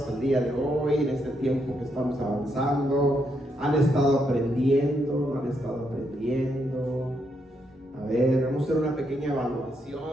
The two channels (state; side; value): normal; both; correlation 0.78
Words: el día de hoy, en este tiempo que estamos avanzando? ¿Han estado aprendiendo? ¿No han estado aprendiendo? A ver, vamos a hacer una pequeña